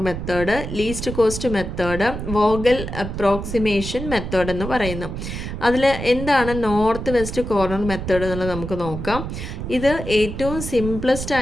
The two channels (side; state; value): right; noise; rumble, 7 dB below the sound